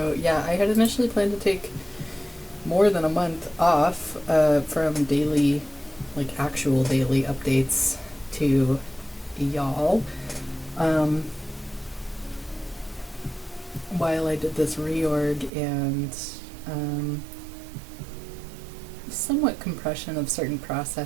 yeah, I had initially planned to take more than a month off from daily, like actual daily updates to y'all, um, while I did this reorg and um, somewhat compression of certain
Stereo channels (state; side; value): drops out; left; at 15.5 s